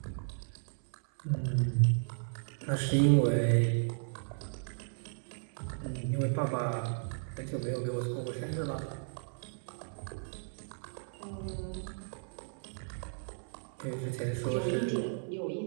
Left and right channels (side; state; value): left; silent; 55 dB below the other